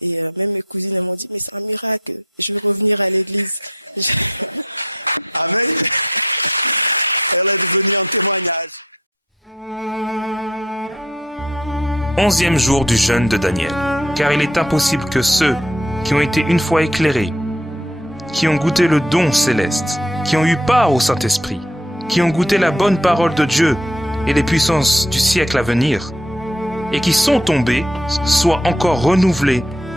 même mes cousines elles m'ont dit mais c'est un miracle, je vais revenir à l'église. Amen. Elle est devenue un témoignage. 11e jour du jeûne de Daniel. Car il est impossible que ceux qui ont été une fois éclairés, qui ont goûté le don céleste, qui ont eu part au Saint-Esprit, qui ont goûté la bonne parole de Dieu et les puissances du siècle à venir, et qui sont tombés, soient encore renouvelés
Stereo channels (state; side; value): normal; both; correlation 0.61